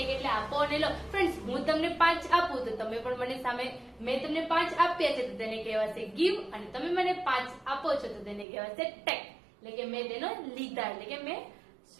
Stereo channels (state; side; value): drops out; left; at 8.5 s